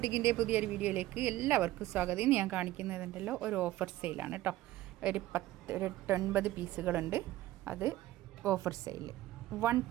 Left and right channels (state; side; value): quieter; left; 15.7 dB